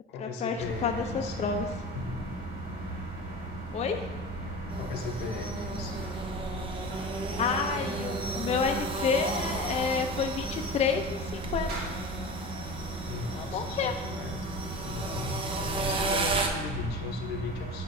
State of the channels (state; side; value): normal; both; correlation 0.32